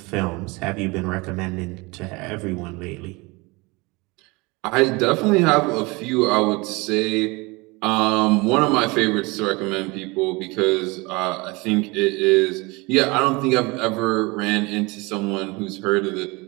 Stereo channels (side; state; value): left; quieter; 25.4 dB